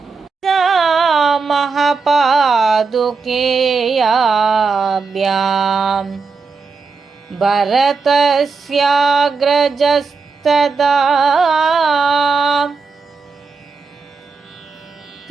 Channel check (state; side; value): quieter; left; 4.7 dB